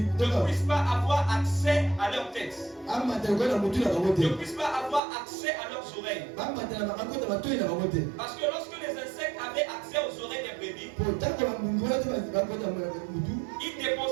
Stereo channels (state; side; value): drops out; left; at 5.0 s